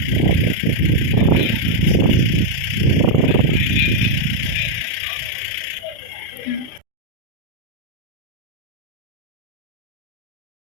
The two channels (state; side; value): late; right; 36 ms